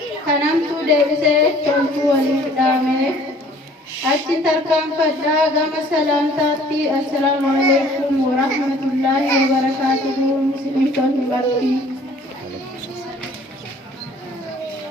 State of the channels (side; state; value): both; normal; correlation 0.54